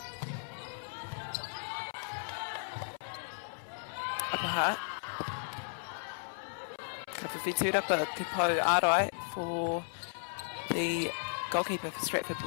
Upper Hutt. Ka whiwhiturapa te pau ārai for the goalkeeper for Stratford.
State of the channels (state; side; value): silent; right; 54 dB below the other